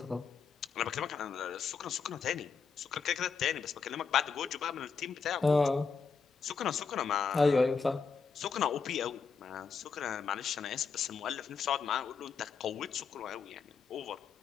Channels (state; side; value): quieter; right; 5.5 dB